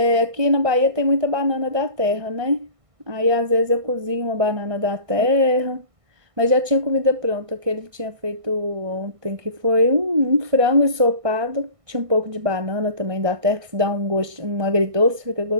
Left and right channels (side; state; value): left; late; 1.6 ms